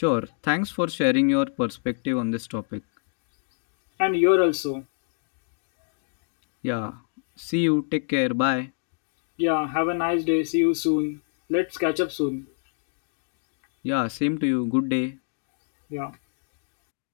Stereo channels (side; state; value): right; silent; digital silence